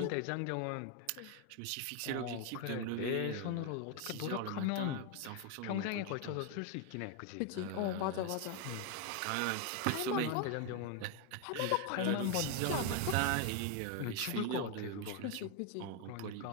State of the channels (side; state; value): both; different; correlation 0.01